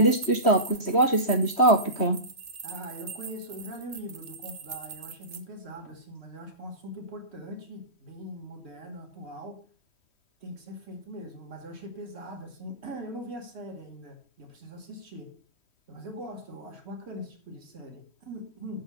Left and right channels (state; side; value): late; right; 3.1 ms